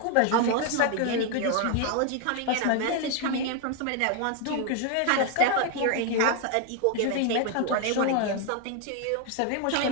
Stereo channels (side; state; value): both; different; correlation 0.01